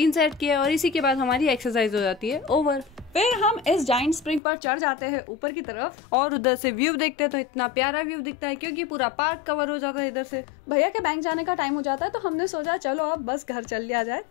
सेट किए और इसी के बाद हमारी एक्सरसाइज हो जाती है ओवर। फिर हम इस जाइंट स्प्रिंग पर चढ़ जाते हैं ऊपर की तरफ और उधर से व्यू देखते हैं तो इतना प्यारा व्यू दिखता है क्योंकि पूरा पार्क कवर हो जाता है इधर से। भैया के बैंक जाने का टाइम हो जाता है तो हमने सोचा चलो अब बस घर चल लिया जाए,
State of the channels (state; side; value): drops out; right; at 4.4 s